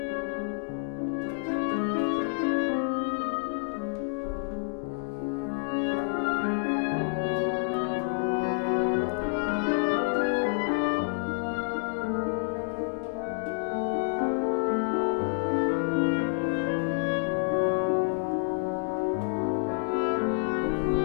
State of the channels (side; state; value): right; silent; 58 dB below the other